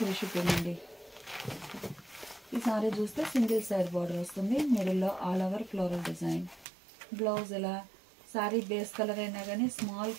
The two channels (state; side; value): drops out; left; at 6.7 s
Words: షిప్పింగ్ అండి. ఈ సారీ చూస్తే సింగిల్ సైడ్ బార్డర్ వస్తుంది. మిడిల్లో all over floral design. Blouse ఇలా సారీ బేస్ కలర్ అయినా కానీ స్మాల్